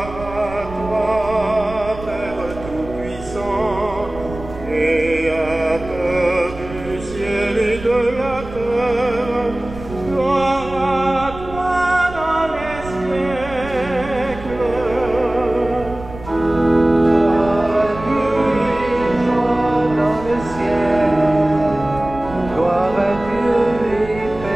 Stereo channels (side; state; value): right; noise; rumble, 14 dB below the sound